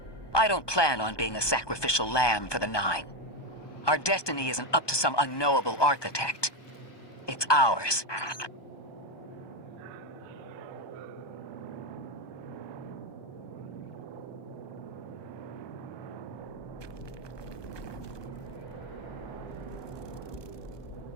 I don't plan on being a sacrificial lamb for the 9. Our destiny isn't up to some unknowable architect. It's ours.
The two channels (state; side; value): late; right; 1.2 ms